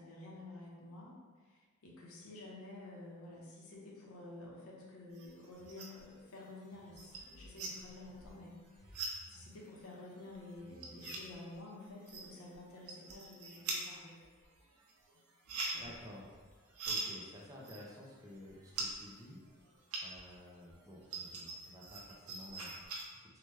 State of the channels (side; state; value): both; normal; correlation 0.11